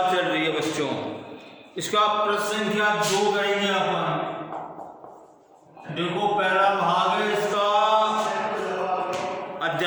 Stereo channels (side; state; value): both; identical; correlation 1.00